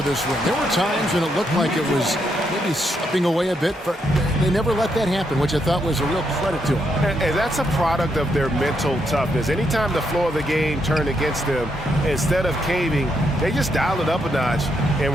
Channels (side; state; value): both; normal; correlation 0.78